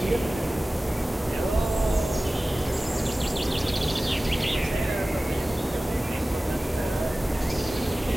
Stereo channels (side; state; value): both; normal; correlation 0.97